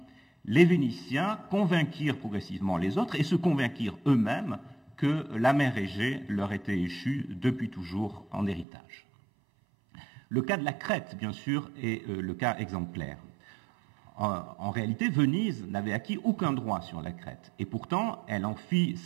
les Vénitiens convainquirent progressivement les autres et se convainquirent eux-mêmes que la mer Égée leur était échue depuis toujours en héritage. Le cas de la Crète, bien sûr, est le cas exemplaire. En réalité, Venise n'avait acquis aucun droit sur la Crète, et pourtant elle en fit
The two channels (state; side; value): drops out; left; at 8.7 s